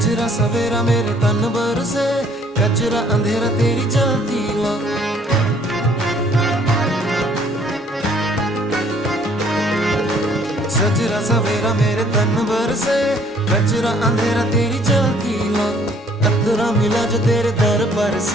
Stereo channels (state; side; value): normal; both; correlation 0.60